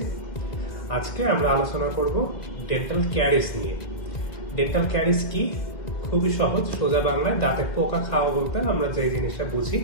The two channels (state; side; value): late; right; 1.9 ms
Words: আজকে আমরা আলোচনা করব ডেন্টাল ক্যারিস নিয়ে। ডেন্টাল ক্যারিস কি? খুবই সহজ, সোজা বাংলায় দাঁতে পোকা খাওয়া বলতে আমরা যে জিনিসটা বুঝি